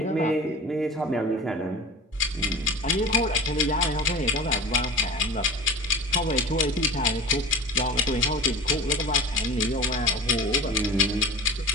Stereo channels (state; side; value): normal; both; correlation 0.35